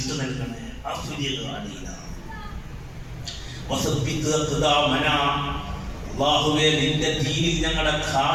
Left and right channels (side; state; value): both; identical; correlation 1.00